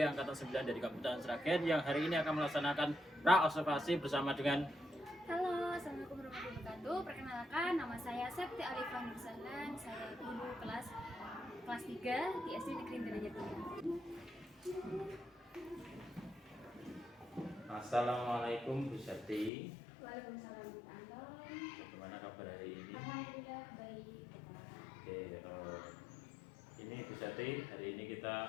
Angkatan 9 dari Kabupaten Sragen yang hari ini akan melaksanakan pra-observasi bersama dengan. Halo, assalamualaikum warahmatullahi wabarakatuh. Perkenalkan, nama saya Septi Alifah Nursalan. Saya guru kelas 3 di SD Negeri Denya 3. Assalamualaikum Bu Septi. Waalaikumsalam, Pak Anton. Bagaimana kabar hari ini? Alhamdulillah baik. Oke, ini Bu Septi, hari ini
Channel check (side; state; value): right; drops out; at 19.5 s